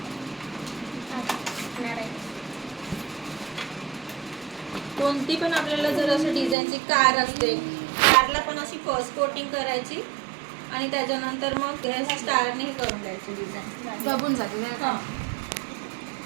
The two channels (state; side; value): drops out; left; at 6.6 s